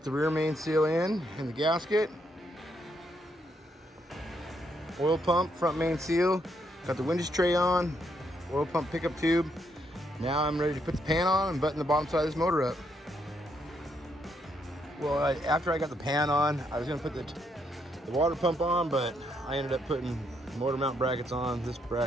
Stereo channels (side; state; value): both; normal; correlation 0.76